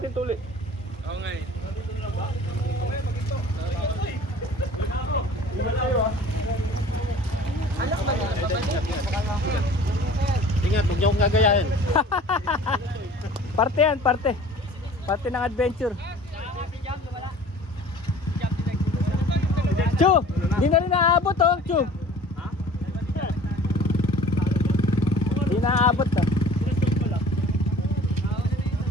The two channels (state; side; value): normal; both; correlation 0.46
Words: ito ulit. Oo nga eh. Ingat kayo ah. Ingat, huwag niyo akong gagayahin. Parte yan, parte. Parte ng adventure. Chu! Di na rin naaabot oh, Chu! Di na naaabot ah.